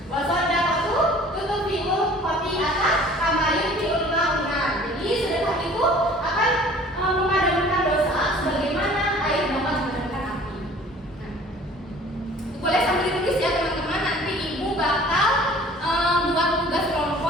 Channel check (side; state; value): both; normal; correlation 0.49